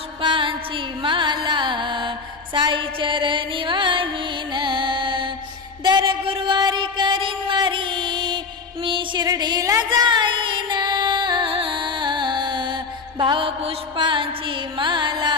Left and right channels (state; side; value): quieter; right; 4.6 dB